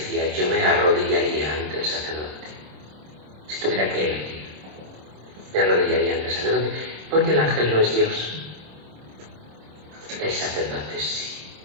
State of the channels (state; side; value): late; left; 26 ms